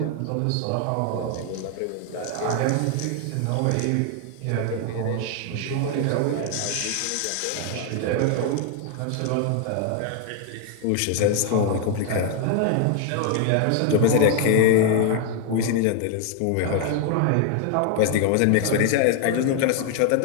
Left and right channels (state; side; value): different; both; correlation 0.00